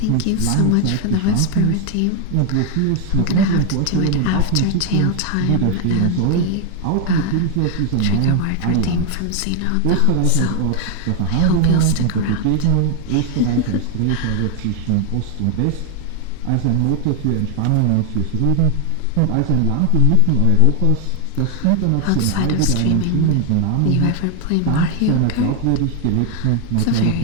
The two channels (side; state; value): both; different; correlation 0.01